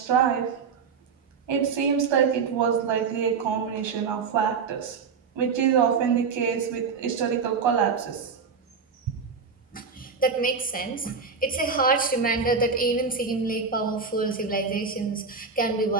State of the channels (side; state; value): left; quieter; 5.5 dB